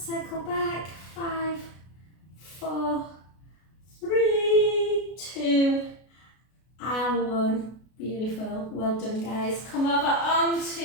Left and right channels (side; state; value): right; late; 33 ms